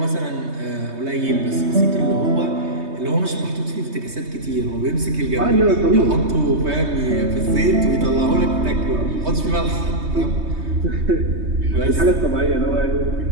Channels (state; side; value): late; left; 3.2 ms